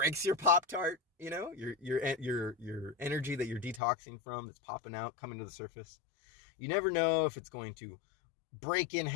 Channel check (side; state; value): right; drops out; at 3.8 s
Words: your Pop-Tart, your energy that you're detoxing from that's popping out, coming to the surface. You never know if it's going to break in